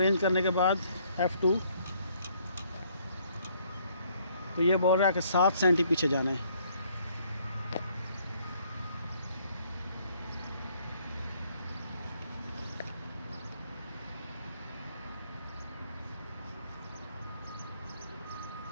करने के बाद F2, तो ये बोल रहा है कि 7 सेंटी पीछे जाना है।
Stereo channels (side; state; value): both; inverted; correlation -0.65